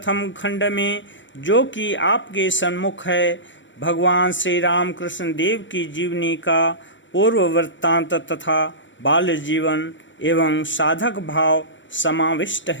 खंड में, जो कि आपके सम्मुख है, भगवान श्री रामकृष्ण देव की जीवनी का पूर्व वृत्तांत तथा बाल्य जीवन एवं साधक भाव समाविष्ट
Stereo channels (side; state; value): right; late; 0.55 ms